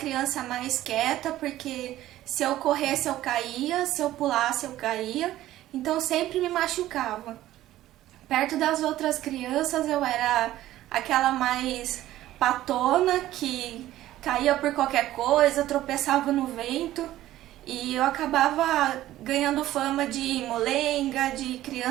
mais quieta porque se eu corresse eu caía, se eu pulasse eu caía, então sempre me machucava. Perto das outras crianças eu era aquela mais patona que caía por qualquer coisa, tropeçava no vento. E eu acabava ganhando fama de molenga, de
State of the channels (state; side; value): quieter; left; 14.4 dB